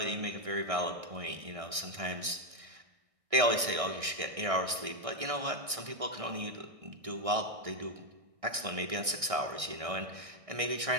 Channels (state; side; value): late; left; 1.6 ms